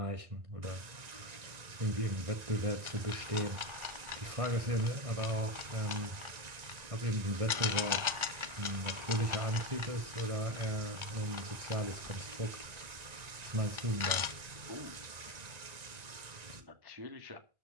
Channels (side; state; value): left; late; 1.4 ms